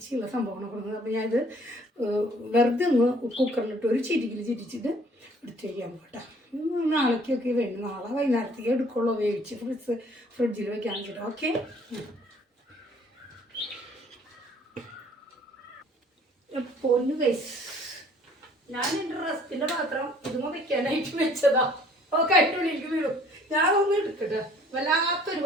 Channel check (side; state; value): both; normal; correlation 0.57